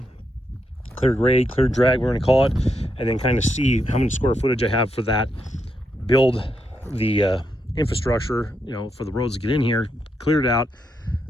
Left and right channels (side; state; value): both; normal; correlation 0.81